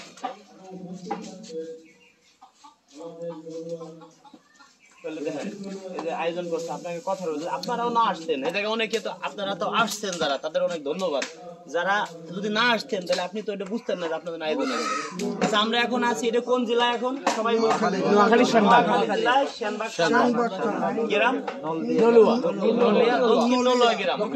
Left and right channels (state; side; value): identical; both; correlation 1.00